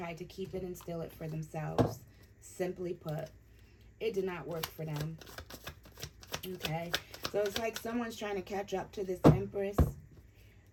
to keep it and steal it for themselves. Simply put, it did not work for them. Okay, so it's like someone's trying to catch up to this Empress.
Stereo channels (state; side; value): identical; both; correlation 1.00